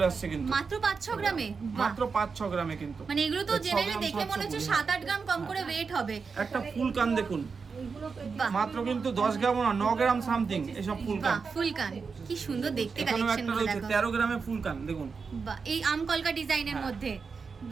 আসছে, কিন্তু মাত্র 5-6 গ্রামে, মাত্র 5-6 গ্রামে কিন্তু, মানে এগুলো তো জেনারেলি দেখে মনে হচ্ছে 7-8 গ্রাম কম করে ওয়েট হবে। একটা ফুল কান দেখুন, মাত্র কিন্তু 10 গ্রাম না 9 গ্রাম সামথিং, এসব ফুল কান। ফুল কান কি সুন্দর দেখতে, কালেকশন গুলো দেখো। 13 গ্রামে ফুল কান দেখুন, বাহ, এই আমকলকা ডিজাইনের মধ্যে,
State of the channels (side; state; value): left; quieter; 5.1 dB